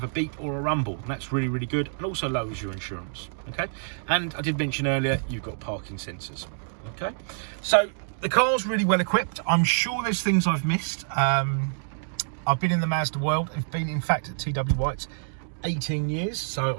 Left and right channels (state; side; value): silent; left; digital silence